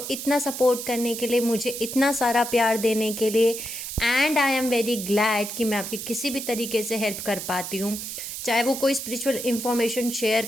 इतना सपोर्ट करने के लिए, मुझे इतना सारा प्यार देने के लिए। And I am very glad कि मैं आपकी किसी भी तरीके से हेल्प कर पाती हूँ, चाहे वो कोई स्पिरिचुअल इन्फॉर्मेशन शेयर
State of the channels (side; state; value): right; noise; hiss, 7 dB below the sound